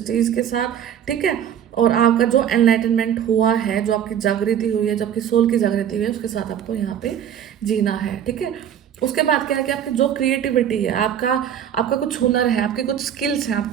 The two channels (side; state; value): left; quieter; 9.5 dB